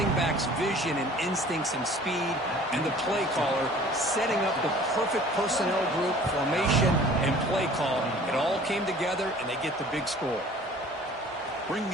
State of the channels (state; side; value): normal; both; correlation 0.49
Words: back's vision and instincts and speed, and the play caller setting up the perfect personnel group, formation, and play call. It all came together, and they get the big score. Bringing